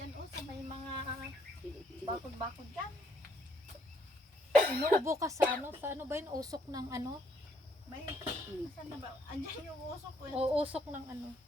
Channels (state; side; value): normal; both; correlation 0.69